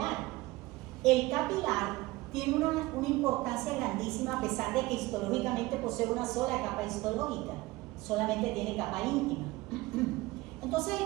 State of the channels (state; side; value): quieter; left; 20.2 dB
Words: El capilar tiene una importancia grandísima, a pesar de que histológicamente posee una sola capa histológica, solamente tiene capa íntima. Entonces